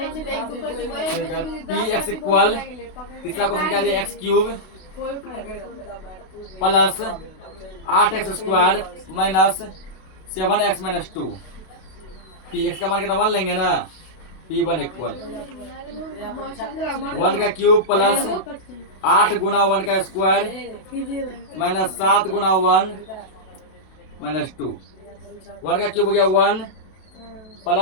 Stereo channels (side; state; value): right; late; 32 ms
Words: के एक दो पर Px इक्वल तीसरा क्वेश्चन क्या दिया? x³ plus 8x² minus 7x - 2। Px का मान कितना 1 लेंगे ना। P1 इक्वल 1 का क्यूब प्लस 8 गुना 1 का स्क्वायर माइनस 7 गुना 1 माइनस 2। 1 का क्यूब हो गया 1